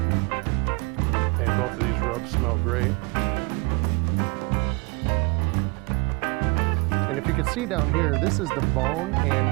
And both of these rubs smell great. And if you can see down here, this is the bone, and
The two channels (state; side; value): quieter; left; 28.8 dB